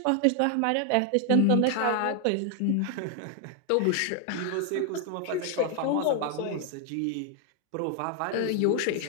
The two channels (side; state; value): both; different; correlation 0.00